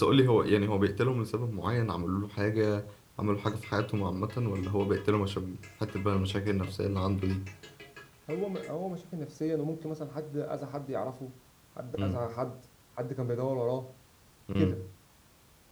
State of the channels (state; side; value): identical; both; correlation 1.00